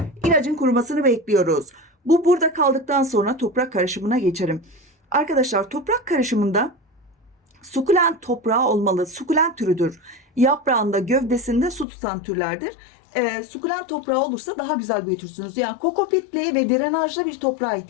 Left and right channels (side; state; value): right; drops out; at 11.9 s